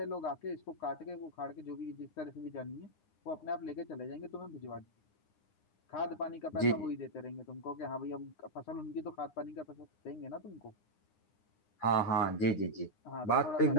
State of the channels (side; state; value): right; late; 9.3 ms